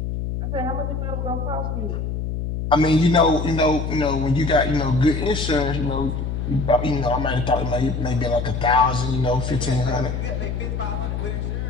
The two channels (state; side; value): noise; left; hum, 3 dB below the sound